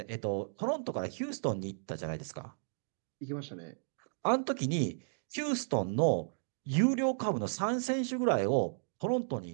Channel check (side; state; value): left; silent; digital silence